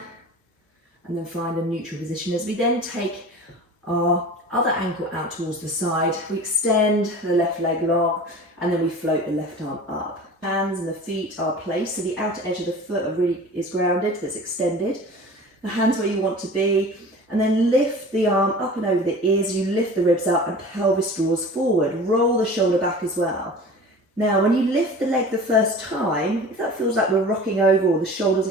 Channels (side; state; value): both; normal; correlation 0.39